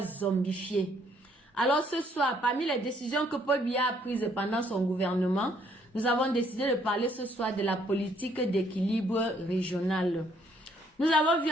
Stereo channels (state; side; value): normal; both; correlation 0.67